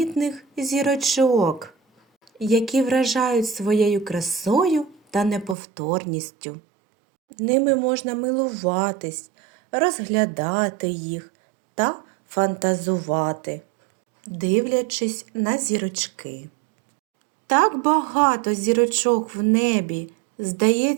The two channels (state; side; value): drops out; left; at 5.6 s